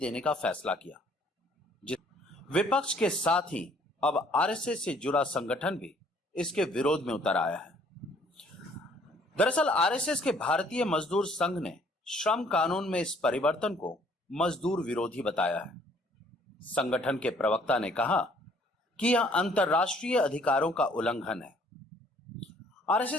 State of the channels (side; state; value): both; normal; correlation 0.60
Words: का फैसला किया। विपक्ष के साथ ही अब आरएसएस से जुड़ा संगठन भी इसके विरोध में उतर आया है। दरअसल आरएसएस के भारतीय मजदूर संघ ने श्रम कानून में इस परिवर्तन को मजदूर विरोधी बताया है। संगठन के प्रवक्ता ने कहा कि यह अंतर्राष्ट्रीय अधिकारों का उल्लंघन है।